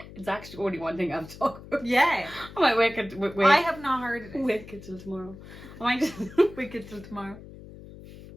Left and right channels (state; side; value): noise; left; hum, 16 dB below the sound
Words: it's actually only one thing I've talked about. Yeah. I might wait. I have not heard of it. Wait till tomorrow. I might just wait till tomorrow.